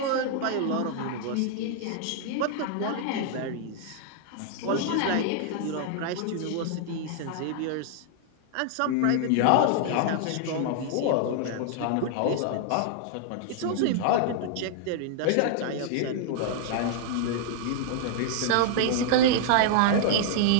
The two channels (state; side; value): different; both; correlation -0.01